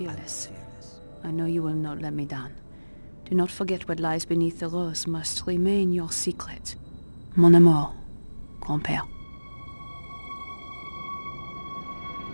I know you will not let me down. Do not forget what lies beneath the rose must remain your secret. Mon amour, grand-père.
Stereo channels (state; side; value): inverted; both; correlation -1.00